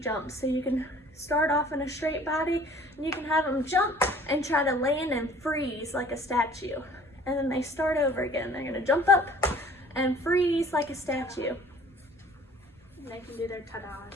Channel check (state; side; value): normal; both; correlation 0.51